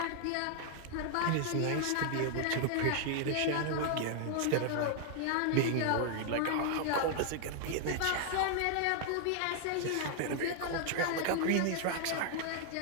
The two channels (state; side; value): different; both; correlation 0.00